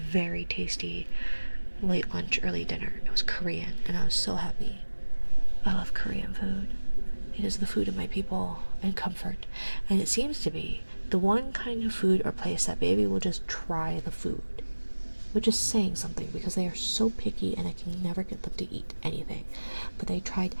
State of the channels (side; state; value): both; inverted; correlation -1.00